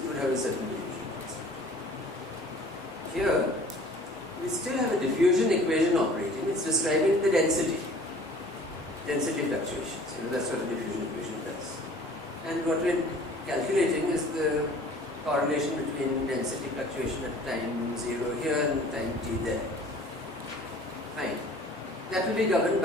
would have a certain diffusion constant. Here, we still have a diffusion equation operating. It's describing the density fluctuations. That's what a diffusion equation does. And what we're calculating is the correlation between density fluctuation at time 0 here and time t there. Fine. That will be governed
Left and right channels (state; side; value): normal; both; correlation 0.49